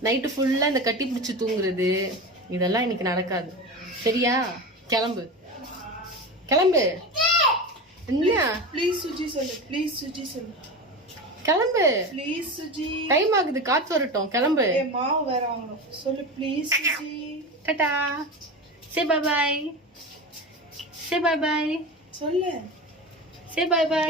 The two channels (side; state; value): both; normal; correlation 0.26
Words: நைட்டு ஃபுல்லா இந்த கட்டி பிடிச்சி தூங்குறது, இதெல்லாம் இன்னைக்கு நடக்காது, சரியா? கிளம்பு கிளம்பு. என்ன ப்ளீஸ் சுஜி சொல்லு, ப்ளீஸ் சுஜி சொல்லு, கிளம்பு. ப்ளீஸ் சுஜி, டைம் ஆகுது, காத்து வரட்டும், கிளம்பு. மாவு வேற வாங்கணும். சொல்லு please Suji. Tata, say bye bye, say bye bye, சொல்லு, சே பை பை.